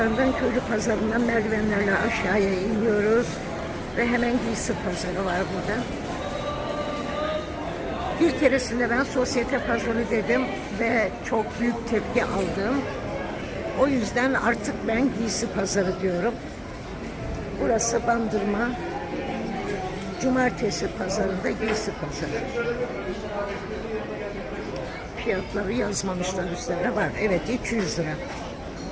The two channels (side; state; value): both; identical; correlation 1.00